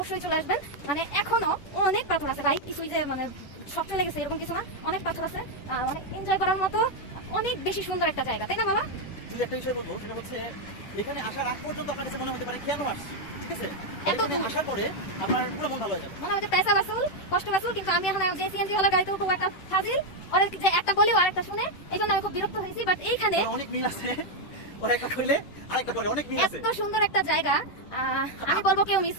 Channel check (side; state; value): right; late; 10 ms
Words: চলে আসবেন। এখনো অনেক পাথর আছে ভাই, কিছুই যে সব চলে গেছে এরকম কিছু না। অনেক পাথর আছে, অনেক এনজয় করার মতো, অনেক বেশি সুন্দর একটা জায়গা, তাই না মামা? একটা বিষয় বলবো, সেটা হচ্ছে এখানে আসার আগ পর্যন্ত আপনার কাছে মনে হতে পারে কেন আসছি, ঠিক আছে? আসার পরে আপনার পুরো মন ভালো হয়ে যাবে, মনে হচ্ছে পয়সা বাসুল, কষ্ট বাসুল। কিন্তু আমি এখন যে সিএনজি ওয়ালা গাড়িতে উঠবো, একটা ফাজিল ওরা যে একটা বলেও আরেকটা শুনে, এই জন্য আমি খুব বিরক্ত হয়েছি। বাট এইখানে অনেক মিল আছে, ওরা একটা কইলে আরেকটা করে, অনেক মিল আছে। এত সুন্দর একটা জায়গা, আমি বলবো কেউ মিস